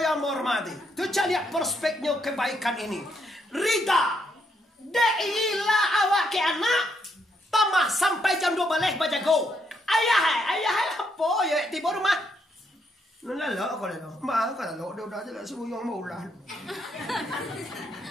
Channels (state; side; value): normal; both; correlation 0.76